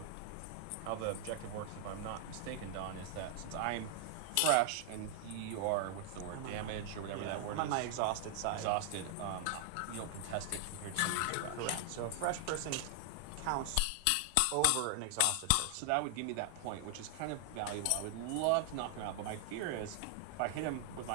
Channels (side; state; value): both; different; correlation 0.00